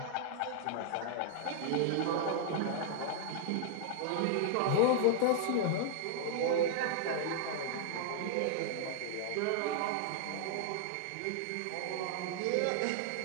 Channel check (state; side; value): different; both; correlation -0.01